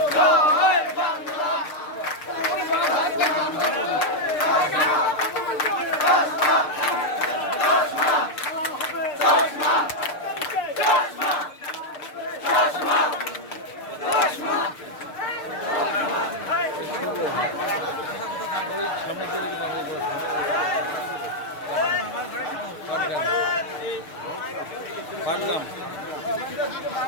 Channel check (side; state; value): right; late; 6.6 ms